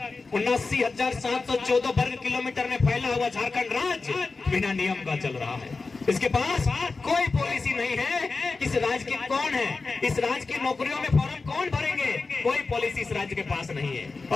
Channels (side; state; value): right; quieter; 4.0 dB